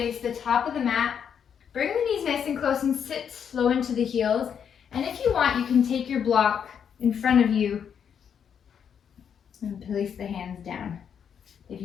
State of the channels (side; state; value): right; quieter; 7.8 dB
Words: the top of the mat. Bring the knees nice and close and sit slow into the heels. And if you want, you can take your block in front of you and place the hands down. If